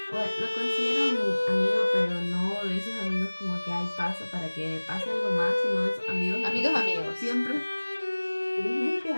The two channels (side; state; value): both; inverted; correlation -1.00